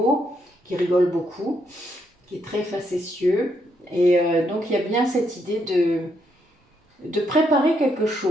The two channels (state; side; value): normal; both; correlation 0.76